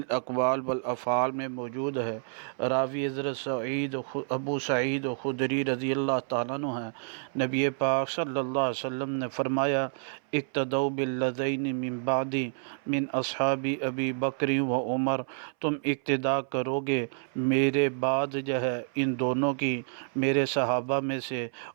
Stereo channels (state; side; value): silent; left; 59 dB below the other